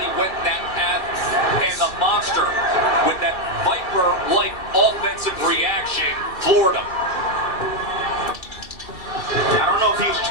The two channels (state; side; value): late; right; 2.7 ms